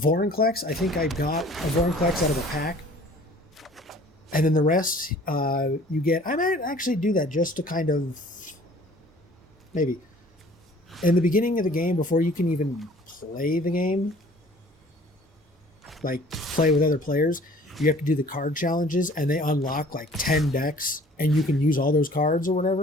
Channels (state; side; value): normal; both; correlation 0.51